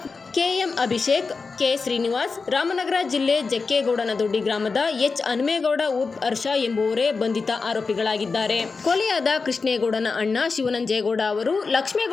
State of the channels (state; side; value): quieter; right; 4.5 dB